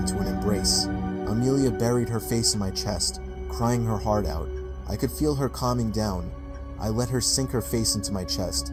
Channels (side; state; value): both; identical; correlation 1.00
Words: an embrace. Amelia buried her face in my chest, crying her heart out. I could feel her calming down. I let her sink her face into my chest,